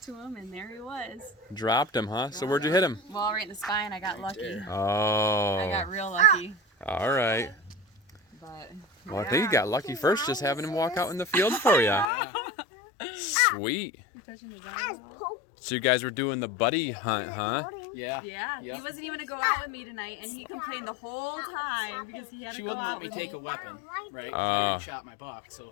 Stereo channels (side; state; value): right; drops out; at 12.1 s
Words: to him, and there he was. Dropped him, huh? So where'd you hit him? Well, right in the spine. I got lucky. there. Oh. I got real lucky. All right. But Well, I think you got lucky first just having him walk out in the field for you. Sweet. You touching his eye? So you guys were doing the buddy hunt, huh? Yeah. Yeah, Yep. he wasn't even gonna go out with me tonight, and he complained the whole time because he had She to go wouldn't out let me with take me. a weapon, right? I already shot my buck, so